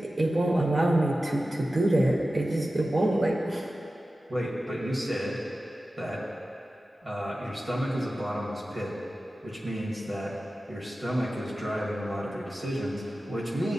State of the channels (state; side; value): normal; both; correlation 0.95